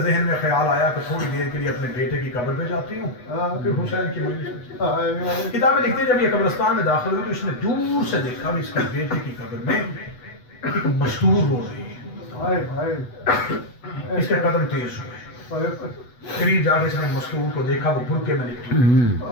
میں خیال آیا کہ تھوڑی دیر کے لیے اپنے بیٹے کی قبر پہ جاتی ہوں، پھر حسین کی مجلس میں۔ کتابیں لکھتے ہیں جب یہ قبرستان میں داخل ہوئی تو اس نے دور سے دیکھا کہ اس کے بیٹے کی قبر میں ایک مستور ہو رہی ہے، اس کے قدم تیز ہوئے، قریب جا کے اس نے مستور کو دیکھا، وہ برقعے میں لپٹی،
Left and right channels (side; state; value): right; late; 8.1 ms